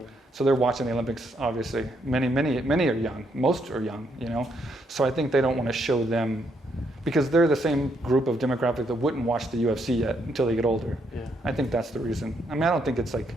So they're watching the Olympics, obviously. Many are young. Most are young, you know. So I think they don't want to show them, because they're the same group of demographic that wouldn't watch the UFC yet until they get older. Yeah. I think that's the reason. I mean, I don't think it's like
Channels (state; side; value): normal; both; correlation 0.75